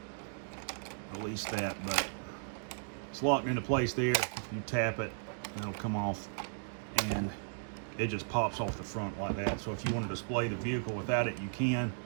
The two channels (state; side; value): silent; left; digital silence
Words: that, but it's locked into place there. You tap it, it'll come off, and it just pops off the front like that. So if you want to display the vehicle without it, you can,